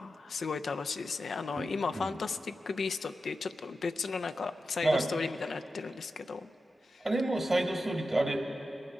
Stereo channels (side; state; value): both; normal; correlation 0.91